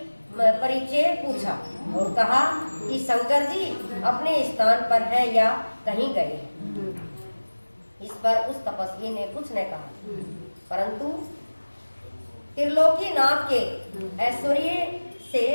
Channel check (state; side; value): inverted; both; correlation -1.00